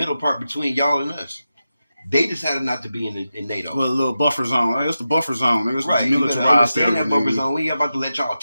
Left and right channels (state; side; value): inverted; both; correlation -0.91